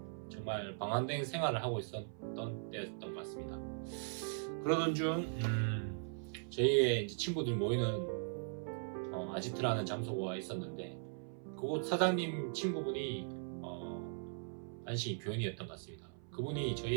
정말 방황된 생활을 하고 있었던 때였던 것 같습니다. 그러던 중 저희의 이제 친구들 모이는 아지트라는 장소가 있었는데 그곳 사장님 친구분이 안식이 교인이었던 것 같습니다. 그분이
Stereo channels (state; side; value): silent; left; 51 dB below the other